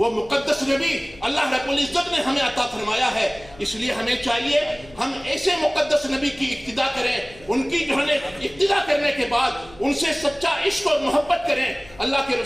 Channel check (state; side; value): noise; left; hum, 23 dB below the sound